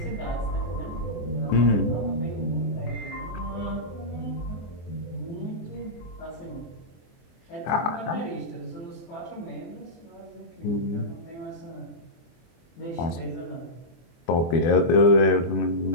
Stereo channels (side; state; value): right; late; 24 ms